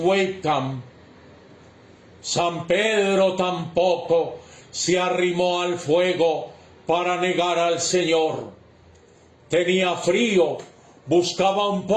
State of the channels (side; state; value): both; identical; correlation 1.00